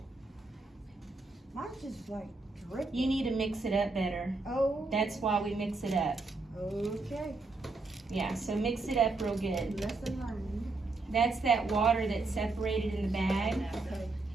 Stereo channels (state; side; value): quieter; left; 3.5 dB